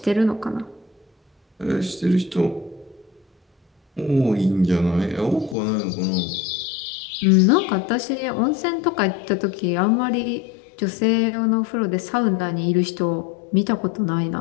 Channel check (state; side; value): drops out; right; at 5.6 s